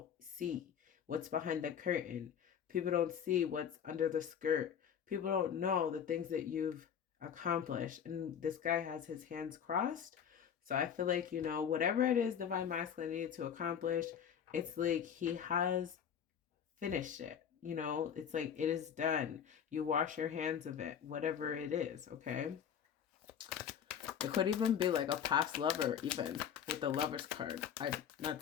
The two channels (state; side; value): quieter; right; 8.3 dB